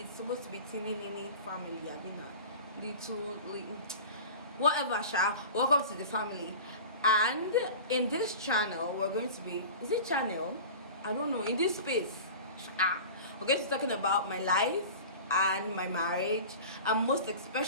supposed to be teeny family. I mean, little whatever. Welcome to the family. And in this channel, we're going to be, is it channel? I don't know. In this space, we're going to be talking about my life and my marriage, and most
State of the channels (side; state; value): both; inverted; correlation -0.36